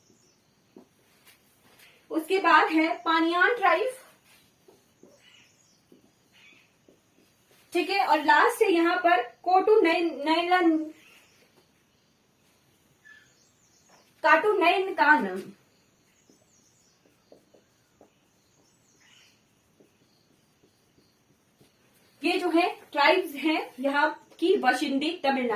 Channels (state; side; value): identical; both; correlation 1.00